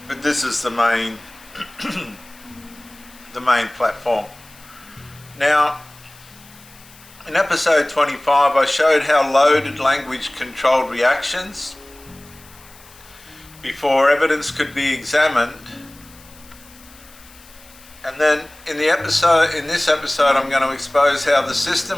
but this is the main the main platform. Now, in episode 25, I showed how loaded language controlled reactions before evidence could be examined. And then in this episode, I'm going to expose how the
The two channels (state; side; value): noise; left; hiss, 23 dB below the sound